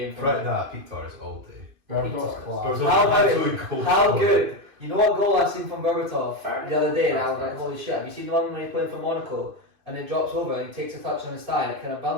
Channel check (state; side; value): late; left; 2.5 ms